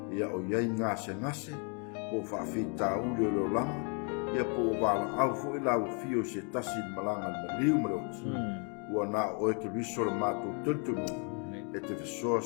ia o ia ngase po fa fita u le langa ia po vala au fo ila o fio se tasi malanga maliu mo ua na o ke riso le mato tuntunu e te so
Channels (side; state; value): right; quieter; 38.6 dB